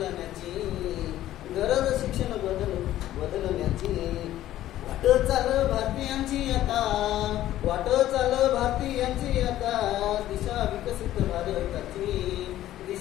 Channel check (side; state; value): right; quieter; 13.6 dB